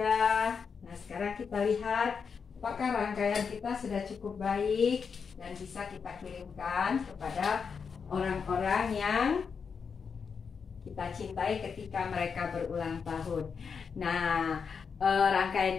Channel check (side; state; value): right; quieter; 6.0 dB